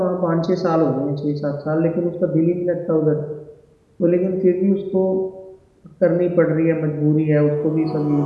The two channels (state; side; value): identical; both; correlation 1.00